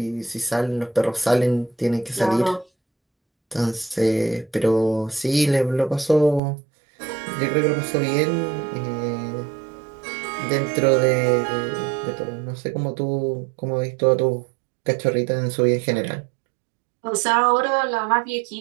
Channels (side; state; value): left; drops out; at 6.4 s